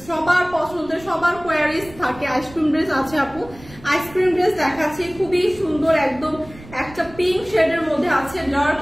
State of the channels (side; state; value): right; noise; rumble, 19 dB below the sound